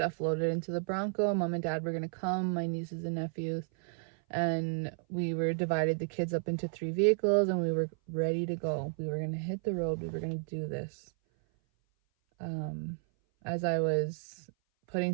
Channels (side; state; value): left; silent; 56 dB below the other